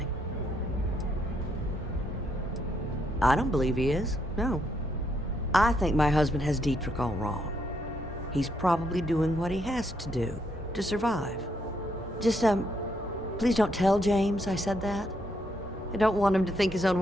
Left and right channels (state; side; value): normal; both; correlation 0.75